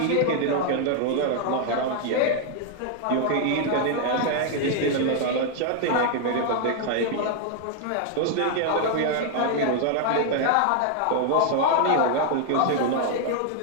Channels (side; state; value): both; different; correlation 0.00